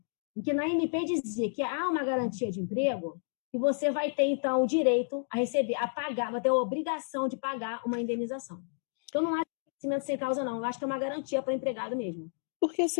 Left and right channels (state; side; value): silent; right; digital silence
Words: em que na MP dizia que há uma garantia de emprego, e você vai ter, então, o direito a receber, a pagar, vai ter a obrigação de pagar uma indenização. Então, não é cimento sem causa, não. Eu acho que é uma garantia para o empregado mesmo. Porque,